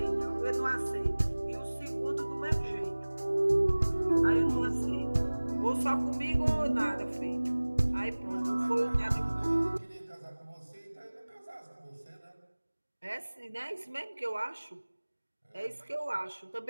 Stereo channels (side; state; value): both; inverted; correlation -1.00